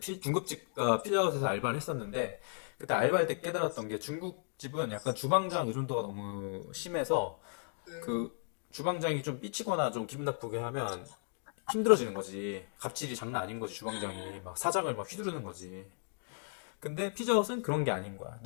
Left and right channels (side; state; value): right; silent; 54 dB below the other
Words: 피자헛에서 알바를 했었는데 그때 알바할 때 깨달았던 게 중국집은 약간 주방장 의존도가 너무 심해서 그 주방장이 좀 삐치거나 좀 기분 나쁘게 하면 힘들어지는 거지. 갑질이 장난 아닌 거지. 주방장이 막 사장을 막 휘두르는 거지. 근데 피자헛은 그런 게 아닌 거야.